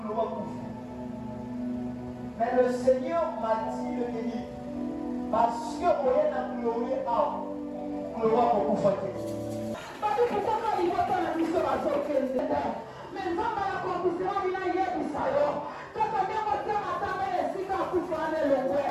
kufa. Mais le Seigneur m'a dit le béni parce que oye na kulowe awa kuloba kokufa te. Bato kutaka iwata na biso bazokende mais nzambe ya kokusema bina yebisa yo kaka nyango te matanga esika akufa ane longwe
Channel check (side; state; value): both; identical; correlation 1.00